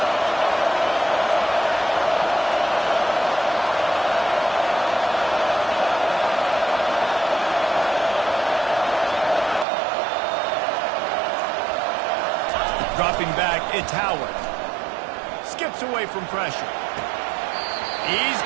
Dropping back, it's Howard. Skips away from pressure. He's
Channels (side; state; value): left; drops out; at 9.7 s